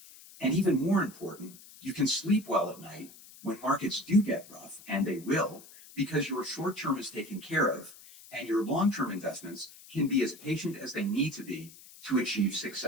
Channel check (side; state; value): left; noise; hiss, 20 dB below the sound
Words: And even more important, you can sleep well at night when markets do get rough, and they will, because your short term is taken care of and your long-term investments can be as patient as they need to be to achieve